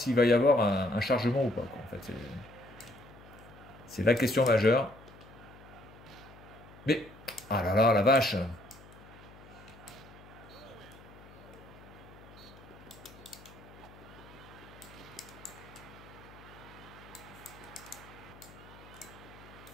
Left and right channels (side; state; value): left; noise; hum, 20 dB below the sound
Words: va y avoir un chargement ou pas, quoi. En fait, c'est la question majeure. Mais... Ah là là, la vache!